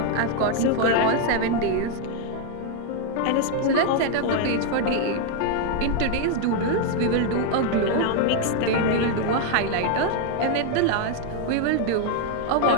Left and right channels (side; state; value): both; different; correlation 0.01